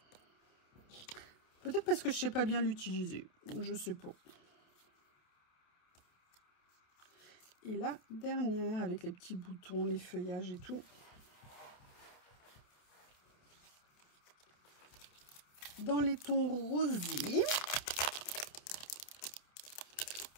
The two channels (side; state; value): right; late; 28 ms